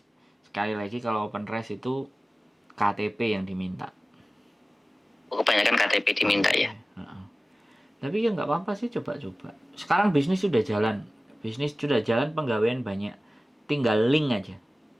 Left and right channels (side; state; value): both; normal; correlation 0.97